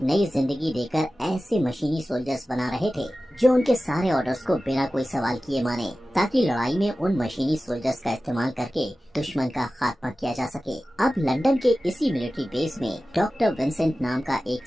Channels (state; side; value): normal; both; correlation 0.95